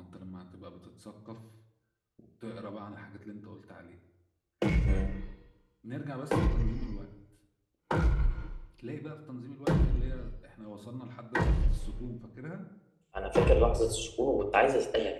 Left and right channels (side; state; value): both; identical; correlation 1.00